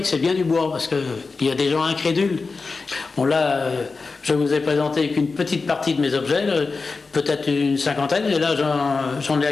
que c'est bien du bois, parce qu'il y a des gens incrédules. Bon là, je vous ai présenté qu'une petite partie de mes objets, peut-être une 50aine, et là j'en ai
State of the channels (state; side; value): quieter; right; 4.2 dB